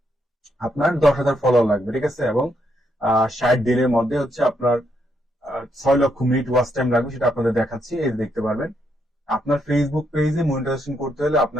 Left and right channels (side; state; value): both; normal; correlation 0.77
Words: আপনার 10,000 ফলোয়ার লাগবে, ঠিক আছে, এবং 60 দিনের মধ্যে আপনার 6 লক্ষ মিনিট ওয়াচ টাইম লাগবে, সেটা আপনাদের দেখাচ্ছি। এই দেখতে পারবেন আপনার ফেসবুক পেজে মনিটাইজেশন করতে হলে